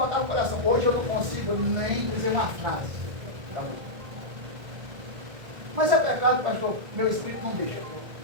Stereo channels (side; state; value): left; late; 1.7 ms